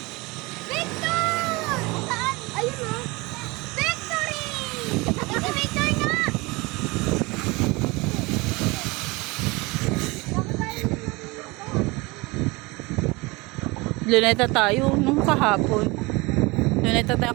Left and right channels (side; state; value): left; quieter; 24.2 dB